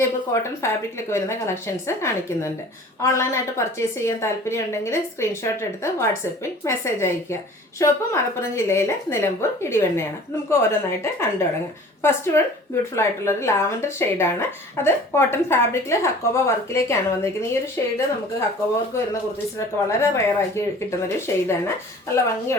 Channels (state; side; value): normal; both; correlation 0.46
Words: കോട്ടൺ ഫാബ്രിക്കിലൊക്കെ വരുന്ന കളക്ഷൻസ് കാണിക്കുന്നുണ്ട്. ഓൺലൈനായിട്ട് പർച്ചേസ് ചെയ്യാൻ താല്പര്യം ഉണ്ടെങ്കിൽ സ്ക്രീൻഷോട്ട് എടുത്ത് വാട്സപ്പിൽ മെസ്സേജ് അയയ്ക്കുക. ഷോപ്പ് മലപ്പുറം ജില്ലയിലെ നിലമ്പൂർ ഇടിവണ്ണയാണ്. നമുക്ക് ഓരോന്നായിട്ട് കണ്ടു തുടങ്ങാം. ഫസ്റ്റ് വൺ ബ്യൂട്ടിഫുൾ ആയിട്ടുള്ളൊരു ലാവൻഡർ ഷെയ്ഡാണ്. അത് കോട്ടൺ ഫാബ്രിക്കിൽ ഹക്കോബ വർക്കിലേക്കാണ് വന്നിരിക്കുന്നത്. ഈ ഒരു ഷെയ്ഡ് നമുക്ക് ഹക്കോബ വർക്ക് വരുന്ന കുർത്തീസിലൊക്കെ വളരെ റെയറാക്കി കിട്ടുന്നൊരു ഷെയ്ഡാണ്. നല്ല